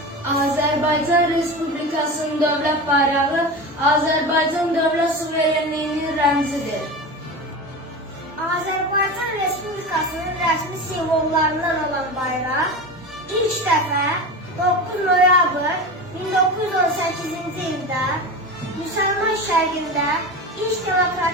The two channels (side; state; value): both; normal; correlation 0.27